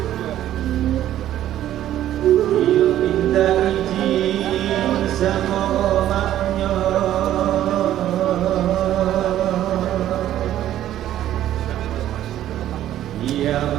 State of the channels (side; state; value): left; quieter; 12.4 dB